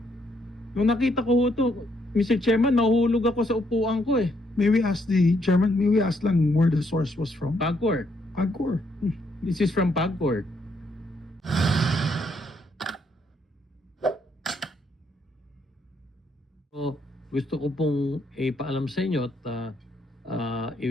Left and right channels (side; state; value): both; normal; correlation 0.73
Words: Nung nakita ko ho ito, Mr. Chairman, nahulog ako sa upuan ko eh. May we ask the chairman, may we ask lang where the source was from? PAGCOR. PAGCOR. This is from PAGCOR. So, gusto ko pong ipaalam sa inyo at